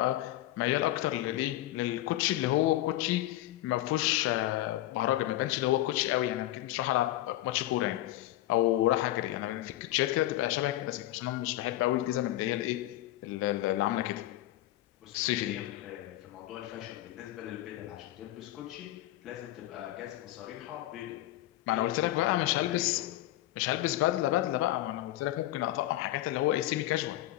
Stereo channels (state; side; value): quieter; right; 15.3 dB